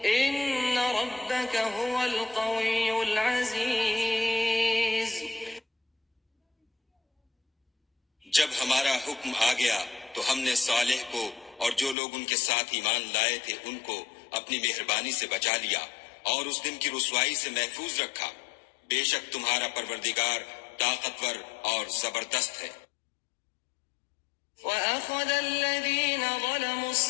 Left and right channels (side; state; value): right; drops out; at 12.0 s